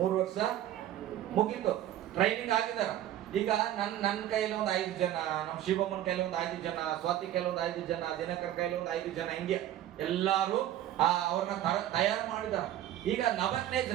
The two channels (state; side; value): quieter; left; 12.4 dB